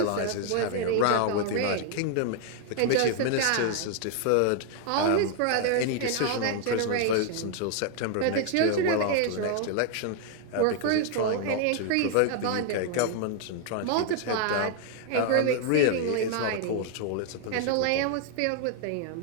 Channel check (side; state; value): both; different; correlation 0.00